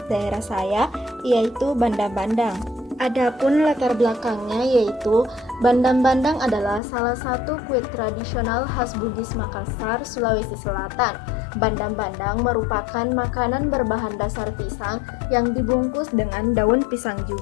daerah saya, yaitu bandang-bandang. Adapun latar belakangnya yaitu bandang-bandang adalah salah satu kue tradisional khas Bugis Makassar, Sulawesi Selatan. Bandang-bandang merupakan makanan berbahan dasar pisang yang dibungkus dengan daun pisang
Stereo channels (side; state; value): right; drops out; at 6.8 s